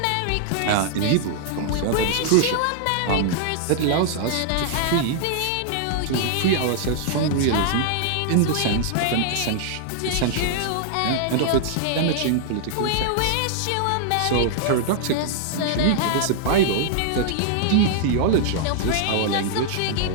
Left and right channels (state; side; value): different; both; correlation -0.01